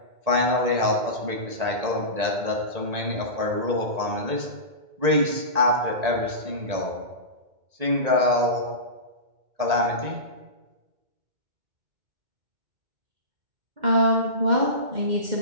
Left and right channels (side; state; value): left; late; 1.8 ms